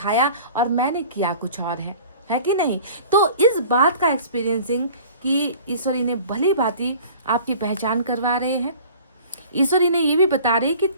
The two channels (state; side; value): inverted; both; correlation -0.45